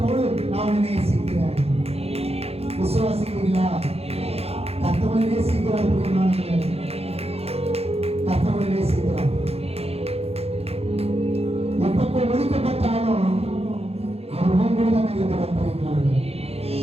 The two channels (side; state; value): left; late; 0.29 ms